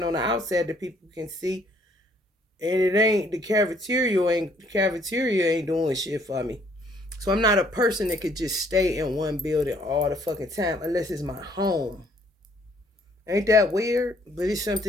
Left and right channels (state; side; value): normal; both; correlation 0.64